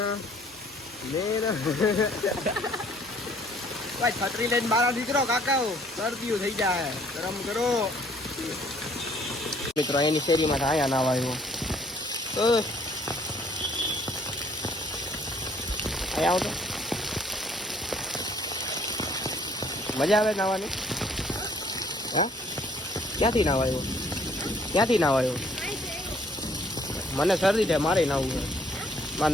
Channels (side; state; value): both; normal; correlation 0.61